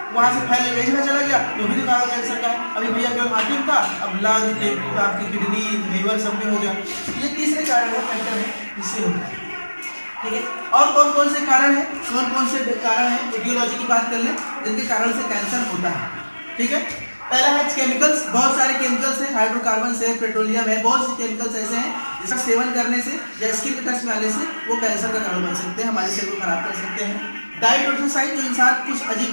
वहाँ से फैल गया, जगह चला गया, तो भी कारण कैंसर का है। अभी भैया केवल हार्ट था, अब लंग, आपकी किडनी, लीवर सब में हो गया। ये तीसरे कारण है, फैक्टर है जिससे होता है। ठीक है, और कौन कौन से कारण हैं, कौन कौन से कारण हैं, एटियोलॉजी की बात कर लें जिनके कारण से कैंसर होता है। ठीक है, पहला है केमिकल्स। बहुत सारे केमिकल्स हैं, हाइड्रोकार्बन है, पेट्रोलियम है, बहुत से केमिकल्स ऐसे हैं जिसका सेवन करने से या स्किन के टच में आने से वो कैंसर का कारण बन सकते हैं, हमारे सेल को खराब कर सकते हैं। डाइट और एक्सरसाइज, जो इंसान कुछ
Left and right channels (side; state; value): both; inverted; correlation -1.00